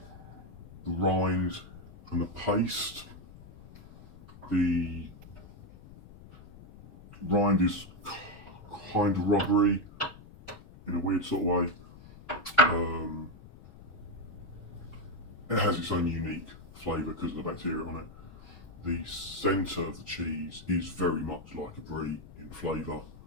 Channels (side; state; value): left; noise; rumble, 19 dB below the sound